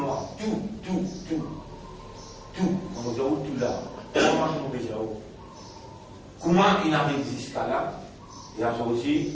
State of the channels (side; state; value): both; identical; correlation 1.00